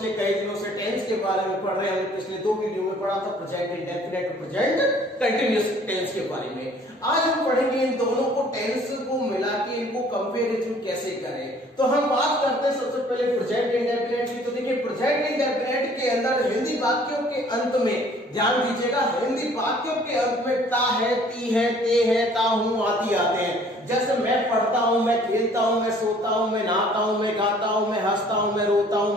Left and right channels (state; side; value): normal; both; correlation 0.56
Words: पिछले कई दिनों से टेंस के बारे में पढ़ रहे हैं। हमने पिछले 2 वीडियो में पढ़ा था प्रेजेंट इंडेफिनिट और प्रेजेंट कंटीन्यूअस टेंस के बारे में। आज हम पढ़ेंगे इन दोनों को, टेंस को मिला के इनको कंपैरिजन कैसे करें। तो हम बात करते हैं सबसे पहले प्रेजेंट इंडेफिनिट की। तो देखिए प्रेजेंट इंडेफिनिट के अंदर हिंदी वाक्यों के अंत में, ध्यान दीजिएगा, हिंदी वाक्यों के अंत में ता है, ती है, ते है, ता हूं आदि आते हैं। जैसे मैं पढ़ता हूं, मैं खेलता हूं, मैं सोता हूं, मैं नहाता हूं, मैं गाता हूं, मैं हंसता हूं, मैं रोता हूं,